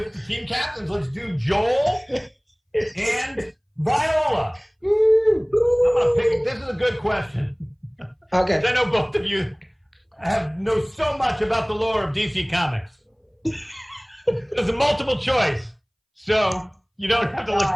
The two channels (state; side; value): identical; both; correlation 1.00